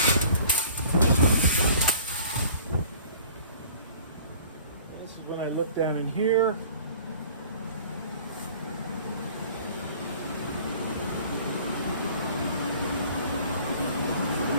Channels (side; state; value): both; inverted; correlation -0.49